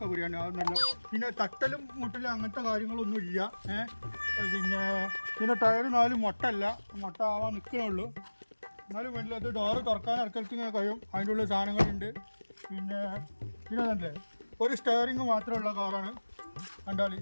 ബിരിയാണി അത് നല്ല. പിന്നെ തട്ടലും മുട്ടലും അങ്ങനത്തെ കാര്യങ്ങളൊന്നും ഇല്ല. പിന്നെ ടയർ 4 മുട്ട ആവാൻ നിൽക്കണുള്ളൂ. എന്നാലും വേണ്ടില്ല. അത് ഡോറ് തുറക്കാൻ ഇറക്കലത്ത് ഇങ്ങനെ കഴിയും. അതിൻ്റെ ഉള്ളിൽ സാധനങ്ങളുണ്ട്. പിന്നെ തന്നെ ഒരു സ്റ്റെയറിങ് മാത്രമുള്ള കാറാണ്. കണ്ടാൽ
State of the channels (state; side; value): inverted; both; correlation -1.00